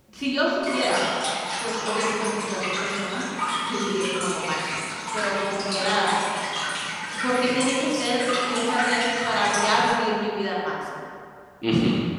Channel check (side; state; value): both; identical; correlation 1.00